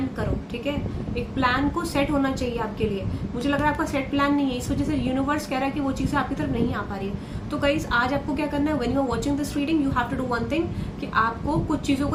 करो, ठीक है। एक प्लान को सेट होना चाहिए आपके लिए। मुझे लग रहा है आपका सेट प्लान नहीं है, इस वजह से यूनिवर्स कह रहा है कि वो चीजें आपकी तरफ नहीं आ पा रही है। तो गाइस आज आपको क्या करना है, when you are watching this reading you have to do one thing, कि आपको कुछ चीजों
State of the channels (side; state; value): both; identical; correlation 1.00